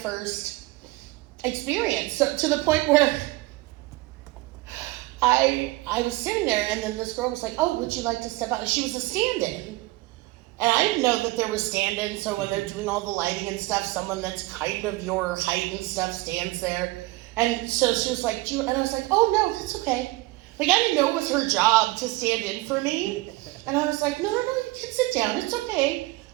first experience. So to the point where I was sitting there, and then this girl was like, "Oh, would you like to step out?" And she was a stand-in, and I didn't know that there was stand-ins. So when they're doing all the lighting and stuff, someone that's kind of your height and stuff stands there. And so she was like, and I was like, "Oh no, that's okay." Like, I didn't know it was her job to stand in for me. And I was like, no, you can sit down. It's okay.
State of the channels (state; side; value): quieter; left; 20.6 dB